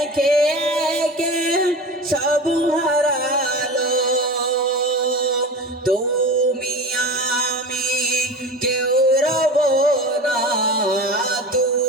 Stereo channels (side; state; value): both; normal; correlation 0.31